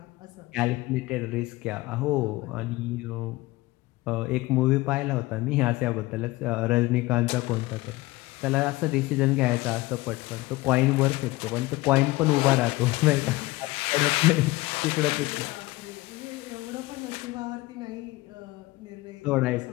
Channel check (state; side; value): quieter; right; 20.2 dB